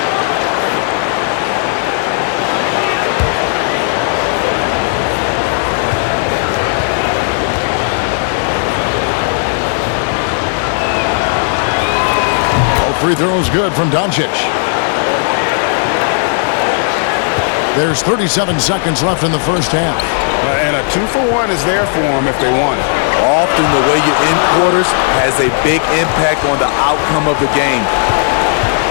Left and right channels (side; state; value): right; silent; digital silence